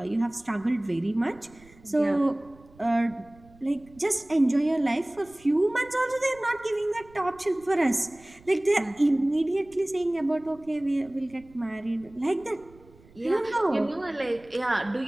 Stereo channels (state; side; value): noise; right; rumble, 26 dB below the sound